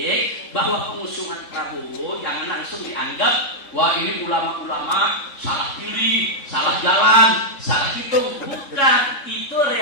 bahwa pengusungan Prabowo jangan langsung dianggap, wah ini ulama-ulama salah pilih, salah jalan, salah hitung. Bukan, itu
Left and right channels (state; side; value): late; right; 3.7 ms